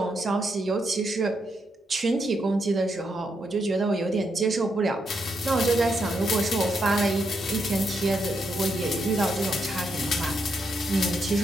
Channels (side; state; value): both; normal; correlation 0.80